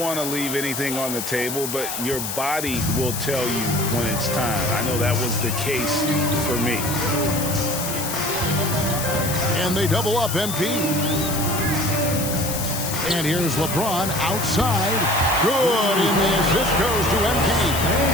to leave anything on the table, but your body will tell you when it's time. I know that was the case for me. And they double up MP. And here's LeBron outside. Good, and the assist goes to MP.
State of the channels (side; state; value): left; noise; hiss, 5 dB below the sound